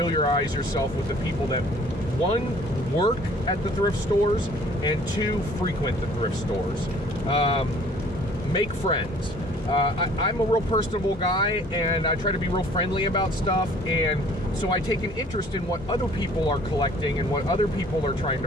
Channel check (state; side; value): normal; both; correlation 0.54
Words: yourself with the people that, 1, work at the thrift stores, and 2, frequent the thrift stores. Make friends. I'm a real personable guy, and I try to be real friendly about stuff, and so I take an interest in what other people are collecting and what other people are trying